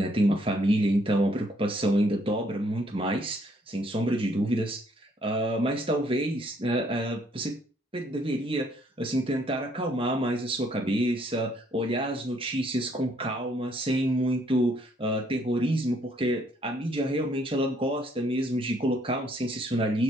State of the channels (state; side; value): normal; both; correlation 0.67